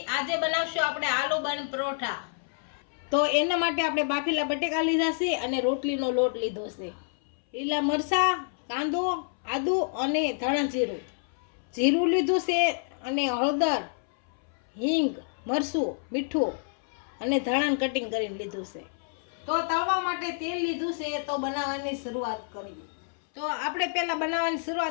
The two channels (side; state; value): right; silent; 59 dB below the other